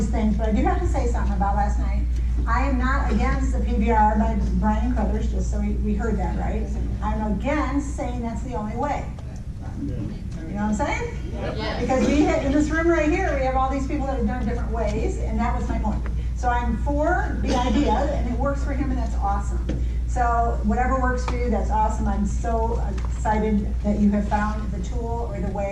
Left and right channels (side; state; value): both; identical; correlation 1.00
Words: things, but I do have to say something about last night. I am not against the PBR by Brian Crothers, just so we heard that right. I'm against saying that's the only way. You know what I'm saying? Yes. Because we in this room right here, we have all these people that have done different ways, and that was my point. So I'm for the idea, and it works for him, and that's awesome. So whatever works for you, that's awesome. I'm so excited that you have found the tool or the